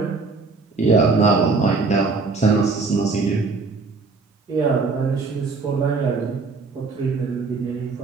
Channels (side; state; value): left; quieter; 4.1 dB